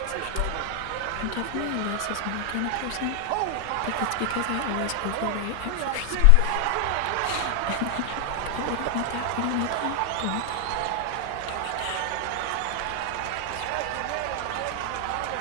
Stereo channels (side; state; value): both; different; correlation 0.00